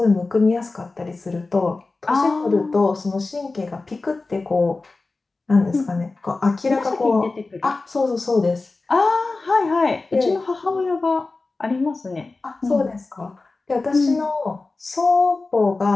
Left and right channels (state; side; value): quieter; right; 3.5 dB